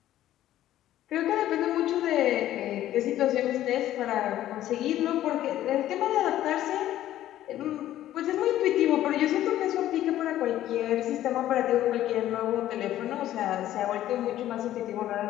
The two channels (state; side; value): quieter; right; 13.1 dB